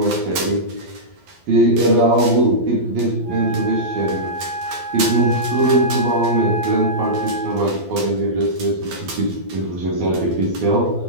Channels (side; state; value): left; late; 12 ms